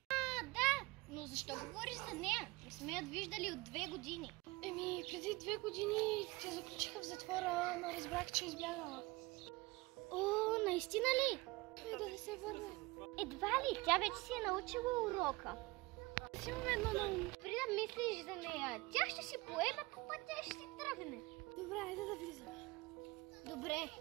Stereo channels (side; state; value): left; quieter; 22.9 dB